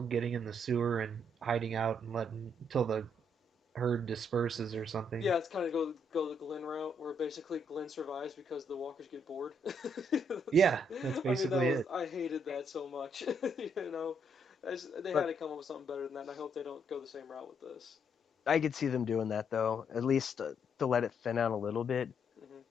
getting in the sewer and hiding out and letting until the herd disperses or something. Yeah, it's kind of go the Glenn route, where basically Glenn survives because the walkers get bored. Yeah, that's I mean, basically it. I hated that so much. They had but to come up with something better than that, and I hope they don't go the same route with this. I could see them doing that though, at least to let it thin out a little bit. Hmm.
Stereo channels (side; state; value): both; normal; correlation 0.73